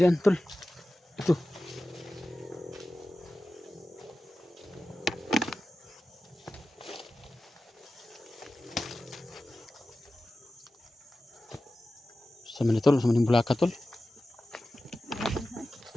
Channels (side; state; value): both; normal; correlation 0.94